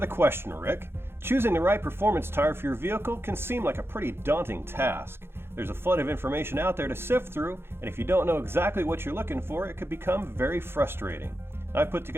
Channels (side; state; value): left; late; 0.11 ms